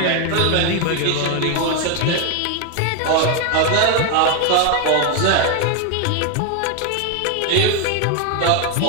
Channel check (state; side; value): different; both; correlation 0.01